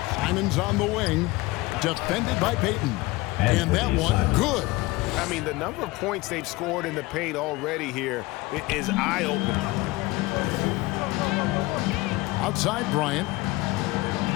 Simons on the wing. Defended by Payton. And that one, good. I mean, the number of points they've scored in the paint already here is eye-opening. Outside Bryant.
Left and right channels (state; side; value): quieter; right; 21.0 dB